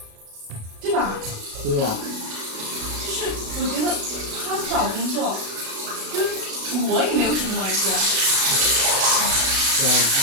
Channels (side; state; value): left; late; 37 ms